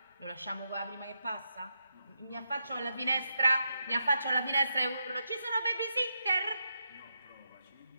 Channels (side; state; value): both; inverted; correlation -0.84